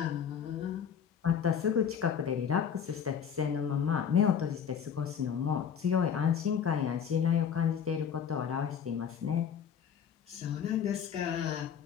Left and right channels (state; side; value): quieter; right; 7.7 dB